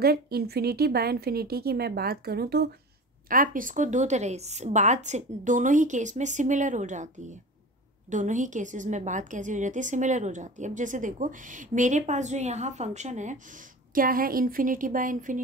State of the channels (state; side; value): normal; both; correlation 0.34